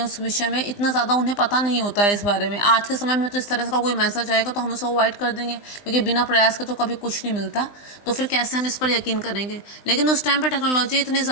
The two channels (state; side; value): late; right; 20 ms